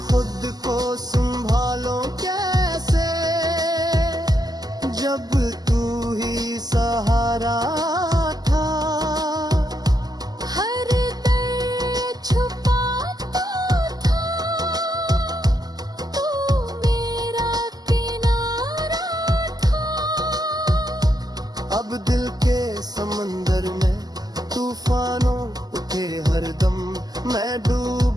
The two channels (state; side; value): late; left; 0.19 ms